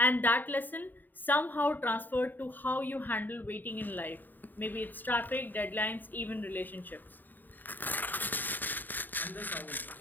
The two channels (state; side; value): late; right; 0.089 ms